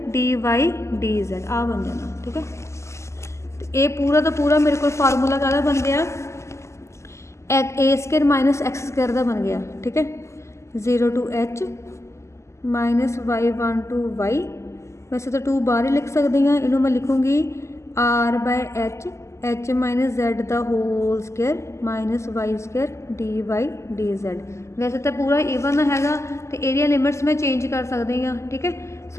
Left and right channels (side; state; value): right; late; 0.13 ms